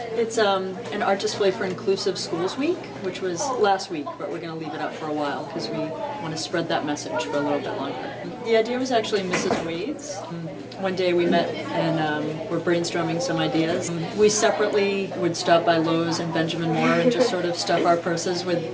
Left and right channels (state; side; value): identical; both; correlation 1.00